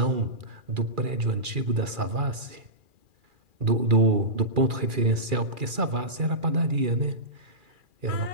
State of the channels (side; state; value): left; late; 2.4 ms